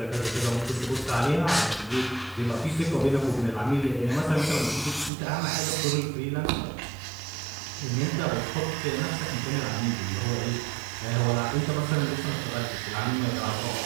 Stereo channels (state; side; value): drops out; left; at 5.1 s